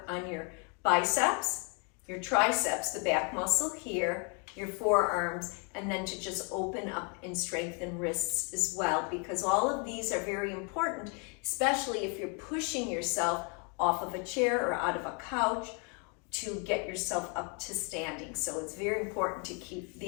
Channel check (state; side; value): quieter; right; 36.7 dB